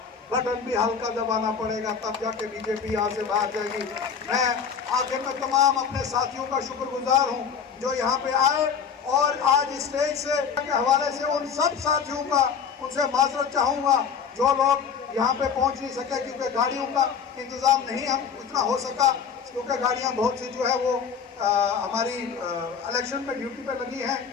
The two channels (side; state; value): right; quieter; 6.7 dB